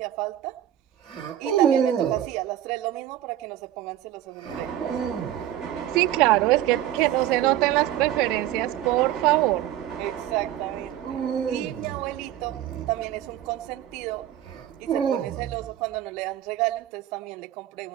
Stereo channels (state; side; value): quieter; left; 12.5 dB